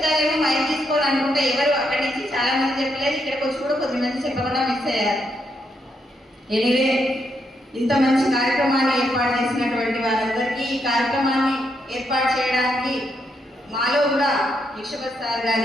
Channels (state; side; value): normal; both; correlation 0.78